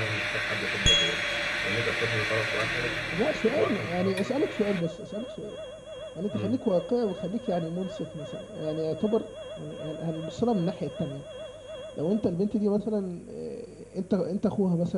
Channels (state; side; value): identical; both; correlation 1.00